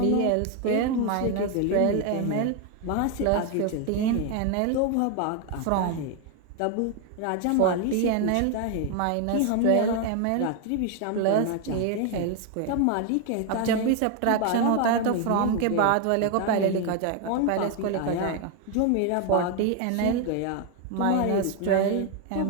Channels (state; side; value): different; both; correlation 0.01